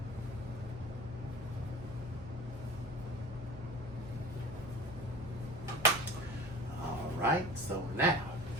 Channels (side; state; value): both; normal; correlation 0.38